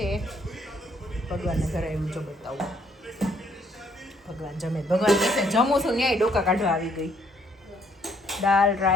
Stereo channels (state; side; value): normal; both; correlation 0.67